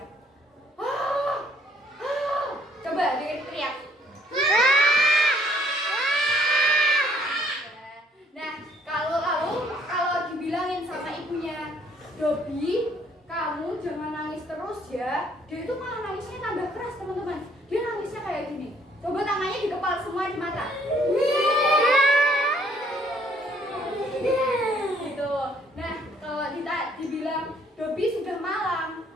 Coba dia teriak. Nah, kalau dibilangin sama ibunya, Dobi, kamu jangan nangis terus ya. Dia itu malah nangisnya tambah keras, teman-teman. Dia nangisnya kayak gini. Coba tangannya dikepal semua di mata. Gitu. Nah, kalau dibilang Dobi sudah malam,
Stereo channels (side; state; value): both; normal; correlation 0.63